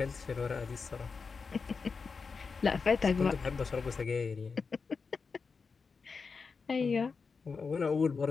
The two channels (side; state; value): right; quieter; 5.0 dB